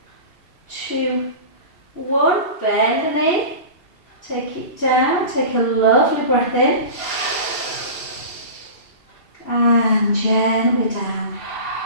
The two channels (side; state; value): right; late; 2.7 ms